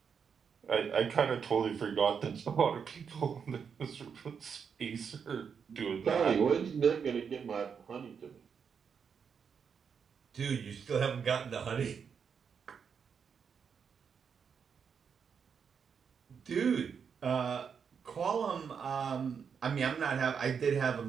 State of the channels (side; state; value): left; quieter; 6.6 dB